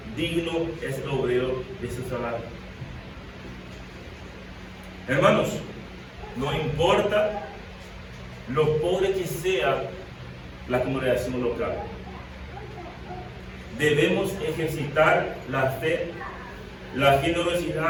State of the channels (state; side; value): identical; both; correlation 1.00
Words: digno es el obrero de su salario. Hermanos, no importa lo pobre que sea la congregación local, debemos ejercitar la fe, la